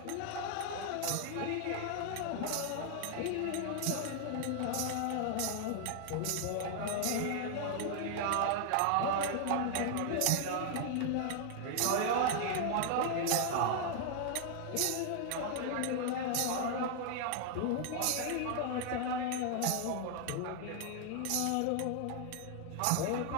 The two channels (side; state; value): both; different; correlation 0.00